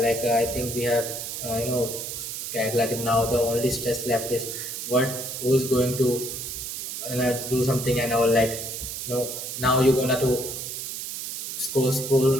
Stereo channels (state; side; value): noise; right; hiss, 6 dB below the sound